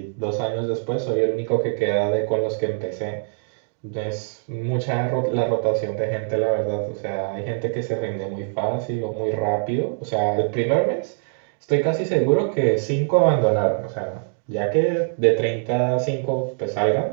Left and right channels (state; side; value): silent; left; digital silence